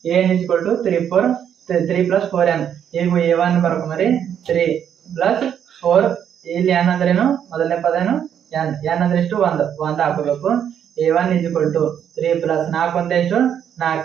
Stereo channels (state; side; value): quieter; left; 9.0 dB